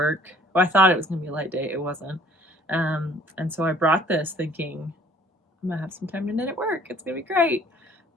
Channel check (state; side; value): normal; both; correlation 0.56